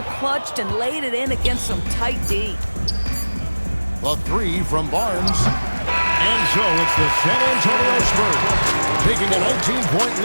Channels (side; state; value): both; inverted; correlation -1.00